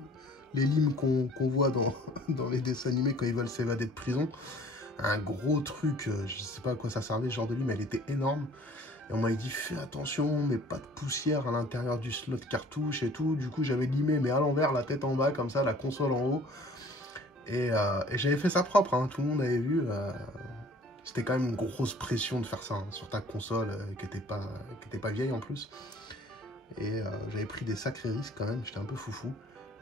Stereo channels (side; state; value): both; normal; correlation 0.52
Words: les limes qu'on voit dans les dessins animés quand ils veulent s'évader de prison. Un gros truc, je sais pas à quoi ça servait ce genre de lime, elle était énorme. Et on m'avait dit fais attention, mais pas de poussière à l'intérieur du slot cartouche et tout. Du coup j'avais limé, mais à l'envers, la tête en bas, comme ça, la console en haut. Et j'avais fait ça propre, hein, tout le monde avait vu. C'était quand même une grosse pression de faire ça hein, sur ta console qui était pas vieille en plus. Et j'avais pris des sacrés risques quand même, j'étais un peu foufou.